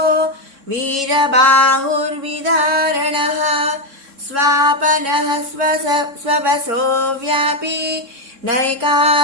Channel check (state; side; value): late; left; 3.6 ms